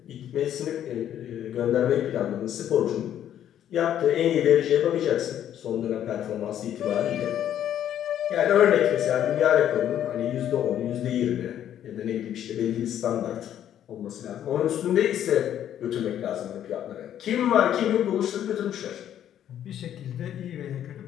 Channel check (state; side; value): quieter; right; 10.6 dB